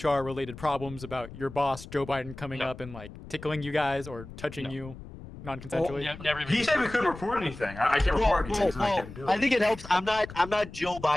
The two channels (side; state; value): left; noise; rumble, 14 dB below the sound